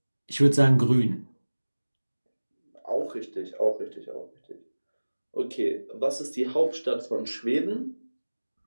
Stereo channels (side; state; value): both; inverted; correlation -1.00